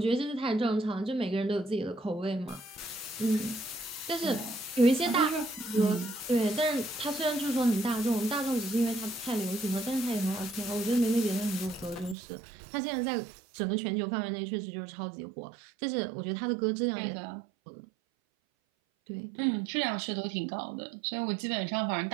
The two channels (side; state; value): left; drops out; at 12.2 s